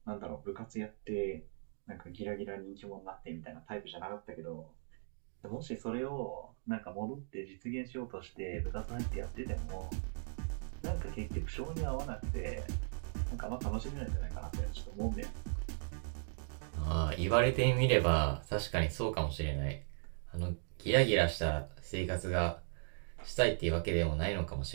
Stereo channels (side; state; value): left; silent; digital silence